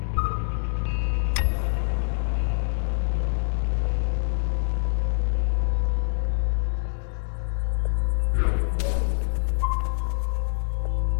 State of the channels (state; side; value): silent; right; digital silence